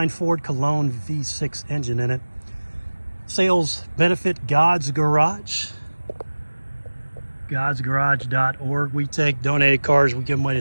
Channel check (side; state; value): both; inverted; correlation -1.00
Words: Ford Cologne V6 engine in it. Sales benefit God's Garage, godsgarage.org. We take donated cars, we give them away